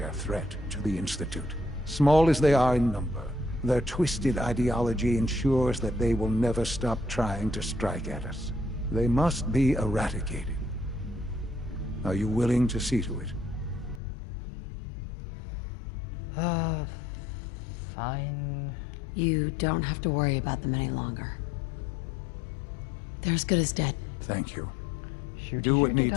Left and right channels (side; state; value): right; drops out; at 14.0 s